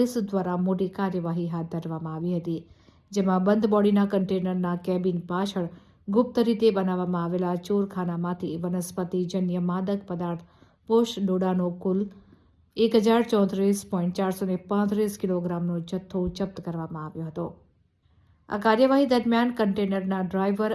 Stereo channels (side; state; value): both; identical; correlation 1.00